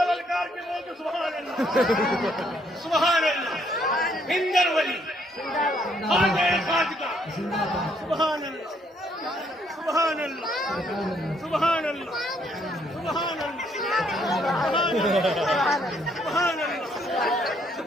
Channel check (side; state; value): both; normal; correlation 0.69